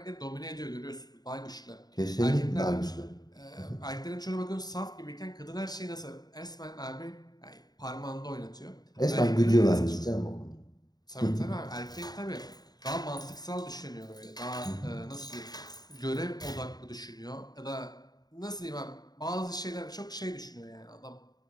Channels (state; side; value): late; right; 0.19 ms